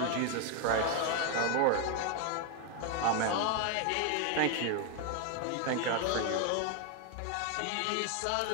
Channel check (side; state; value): both; different; correlation 0.01